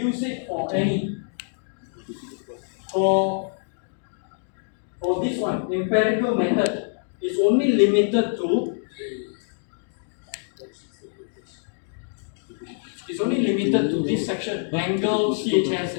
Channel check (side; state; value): right; silent; digital silence